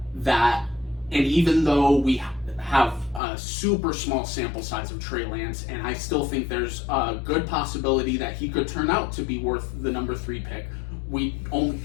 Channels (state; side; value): drops out; right; at 3.2 s